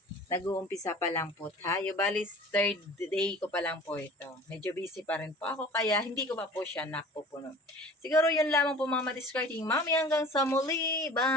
nag-uumpisa pa lang po tayo. Bali, third day ko pa lang po ito. Medyo busy pa rin po ako, kaya hindi ko pa po siya napupuno. Siguro yun lamang po mga madiscarding mami. Hanggang sa muli.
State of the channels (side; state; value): both; normal; correlation 0.43